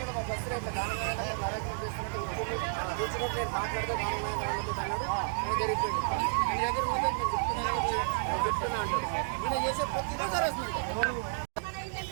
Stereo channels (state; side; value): silent; left; digital silence